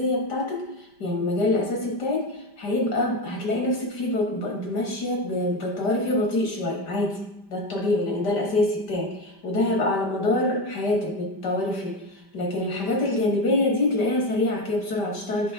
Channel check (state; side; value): late; right; 5.1 ms